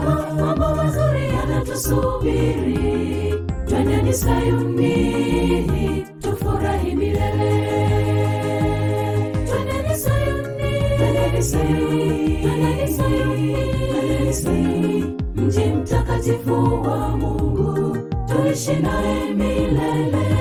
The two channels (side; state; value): both; identical; correlation 1.00